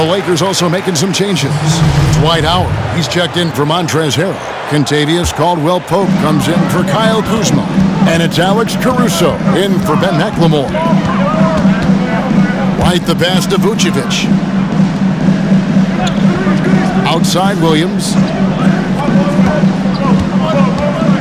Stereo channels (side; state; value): both; identical; correlation 1.00